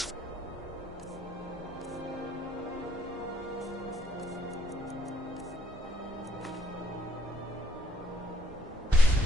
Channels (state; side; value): normal; both; correlation 0.70